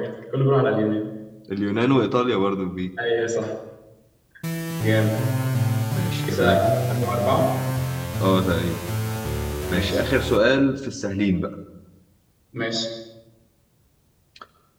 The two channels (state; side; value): identical; both; correlation 1.00